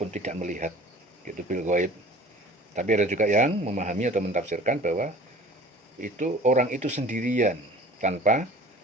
tidak melihat. Itu bil ghaib. Tapi ada juga yang memahami atau mentafsirkan bahwa itu orang itu sendirian tanpa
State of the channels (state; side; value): normal; both; correlation 0.45